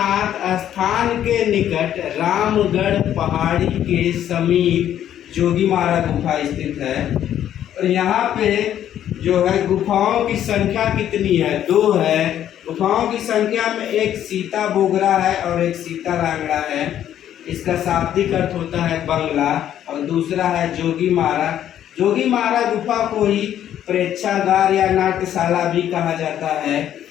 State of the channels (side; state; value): right; quieter; 10.8 dB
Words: स्थान के निकट रामगढ़ पहाड़ी के समीप जोगीमारा गुफा स्थित है। और यहाँ पे जो है गुफाओं की संख्या कितनी है, 2 है। गुफाओं की संख्या में एक सीता बोगरा है और एक सीता लांगड़ा है, इसका शाब्दिक अर्थ होता है बंगला। और दूसरा है जोगीमारा। जोगीमारा गुफा को ही प्रेक्षागार या नाट्यशाला भी कहा जाता है।